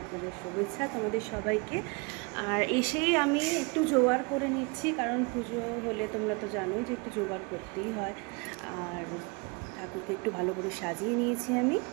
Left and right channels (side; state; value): left; quieter; 30.1 dB